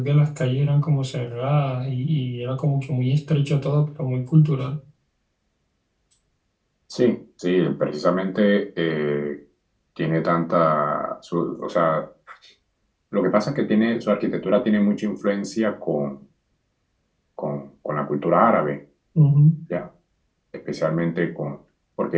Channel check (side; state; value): both; identical; correlation 1.00